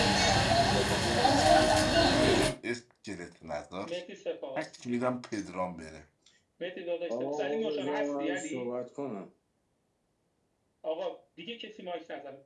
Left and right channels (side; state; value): both; identical; correlation 1.00